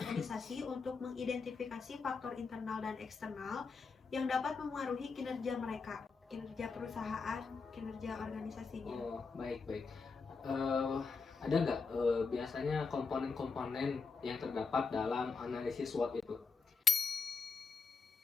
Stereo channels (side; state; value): right; quieter; 4.7 dB